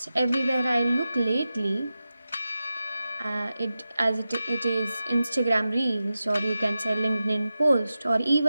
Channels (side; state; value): both; inverted; correlation -0.93